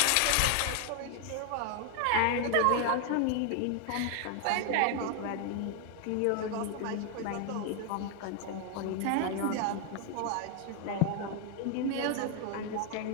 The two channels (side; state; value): both; different; correlation 0.00